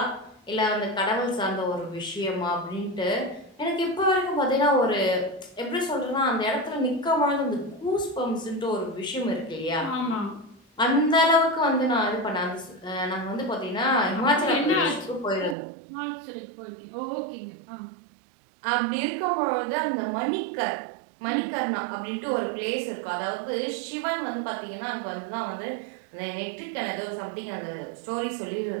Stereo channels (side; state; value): left; drops out; at 15.6 s